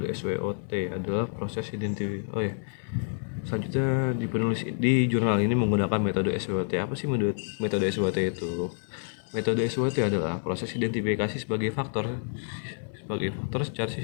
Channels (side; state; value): right; silent; 59 dB below the other